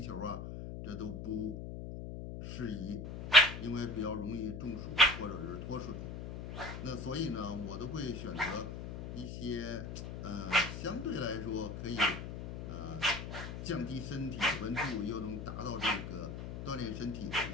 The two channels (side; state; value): left; noise; hum, 7 dB below the sound